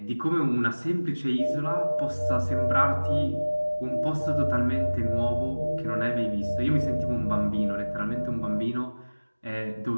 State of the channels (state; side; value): inverted; both; correlation -1.00